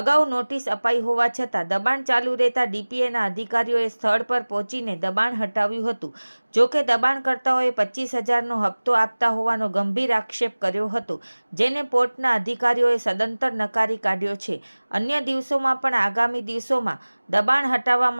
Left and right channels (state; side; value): inverted; both; correlation -1.00